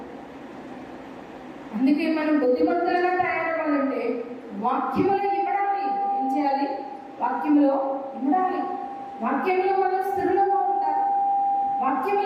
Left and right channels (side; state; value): both; identical; correlation 1.00